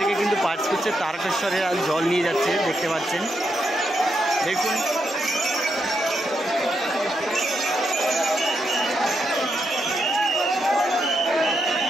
কিন্তু পাস করছে, তারকেশ্বরে আর জল নিয়ে যাচ্ছে, দেখতে পাচ্ছেন, দেখুন।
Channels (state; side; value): normal; both; correlation 0.81